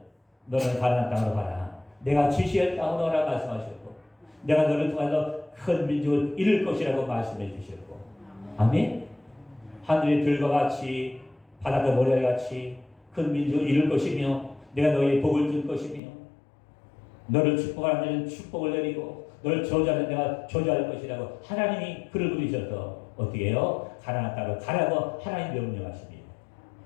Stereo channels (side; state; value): right; drops out; at 16.0 s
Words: 너는 가나안 땅으로 가라. 내가 지시할 땅으로 가라 말씀하셨고, 내가 너를 통해서 큰 민족을 이룰 것이라고 말씀해 주셨고, 아멘. 하늘의 들과 같이 바닷가 모래와 같이 큰 민족을 이룰 것이며, 내가 너희의 복을 줄 것이며, 너를 축복하는 데는 축복을 내리고 너를 저주하는 내가 저주할 것이라고 하나님이 그를 부르셔서 어떻게 해요? 가나안 땅으로 가라고 하나님 명령하십니다.